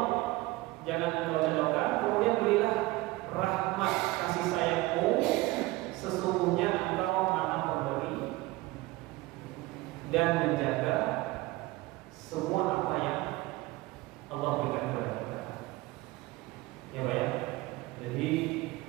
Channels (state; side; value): quieter; left; 19.9 dB